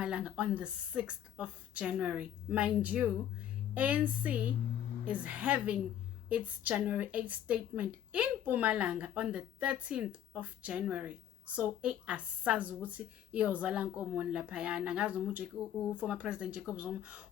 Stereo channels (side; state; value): right; quieter; 10.4 dB